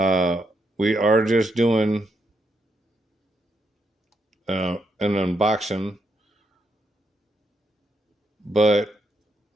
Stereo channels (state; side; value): normal; both; correlation 0.79